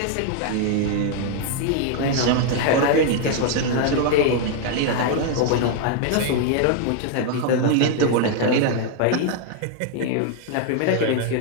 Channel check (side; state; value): both; different; correlation 0.00